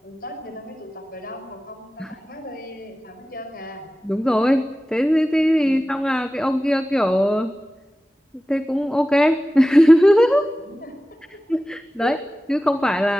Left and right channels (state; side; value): normal; both; correlation 0.95